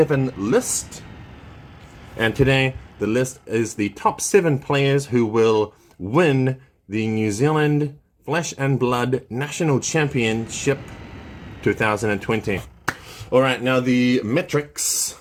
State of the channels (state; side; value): identical; both; correlation 1.00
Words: list. And today, the list is the top 7 players who will win the New Zealand Flesh and Blood National Championship 2020. All right, now the metrics.